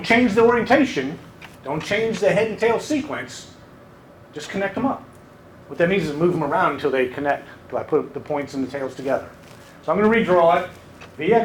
change the orientation. Don't change the head and tail sequence. Just connect them up. What that means is move them around until they connect, until I put the points and the tails together. So I'm going to redraw it.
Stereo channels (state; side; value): identical; both; correlation 1.00